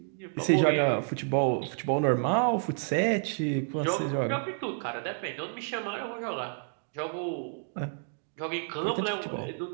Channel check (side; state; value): left; silent; 58 dB below the other